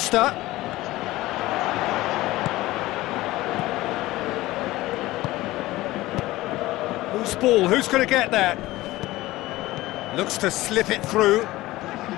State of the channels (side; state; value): right; quieter; 17.9 dB